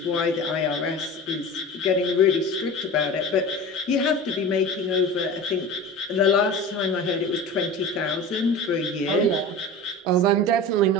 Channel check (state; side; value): normal; both; correlation 0.33